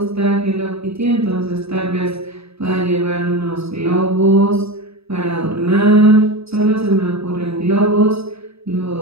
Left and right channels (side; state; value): left; late; 0.78 ms